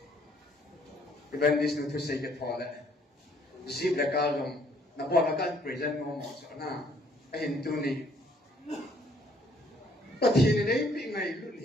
Even this nu to say get pole. Zip la kalom na bo la kan present mo mo so na. Ahin tu ni. Pathin nei pi ngai lu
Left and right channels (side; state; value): both; normal; correlation 0.63